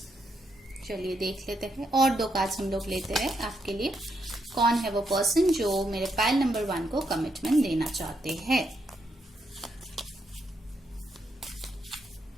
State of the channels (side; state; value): both; normal; correlation 0.79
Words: चलिए देख लेते हैं। और 2 कार्ड्स हम लोग लेते हैं आपके लिए। कौन है वो पर्सन जो मेरे पाइल नंबर 1 को कमिटमेंट देना चाहते हैं।